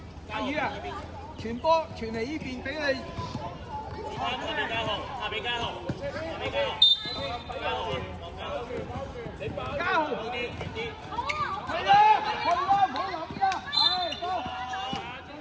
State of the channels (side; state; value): both; identical; correlation 1.00